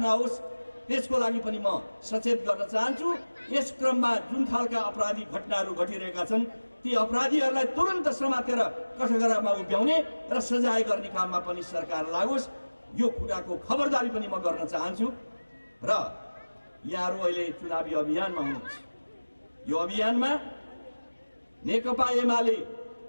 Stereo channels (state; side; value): inverted; both; correlation -1.00